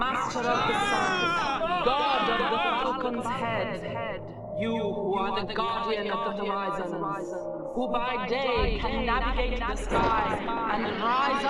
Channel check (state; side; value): identical; both; correlation 1.00